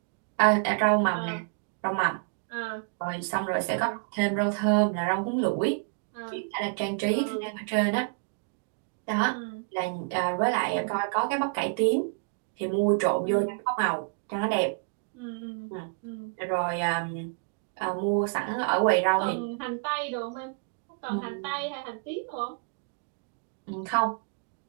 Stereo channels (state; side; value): quieter; left; 38.2 dB